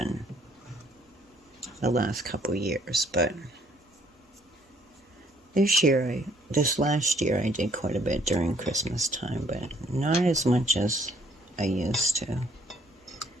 the last couple years, but this year I this last year I did quite a bit during Christmas time, but not as much as I used to.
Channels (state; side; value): normal; both; correlation 0.64